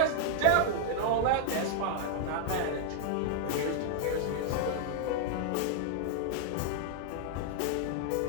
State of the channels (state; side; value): different; both; correlation 0.00